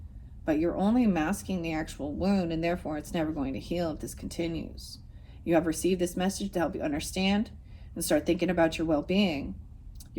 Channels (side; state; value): both; identical; correlation 1.00